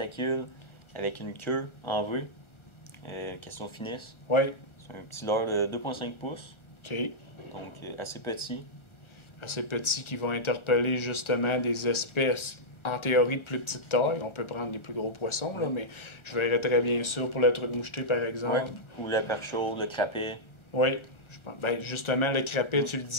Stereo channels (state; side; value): late; right; 1.4 ms